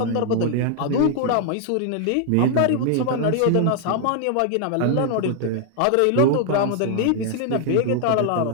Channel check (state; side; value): different; both; correlation 0.00